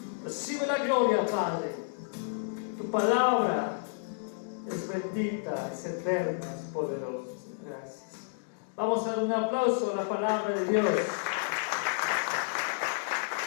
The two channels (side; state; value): right; silent; digital silence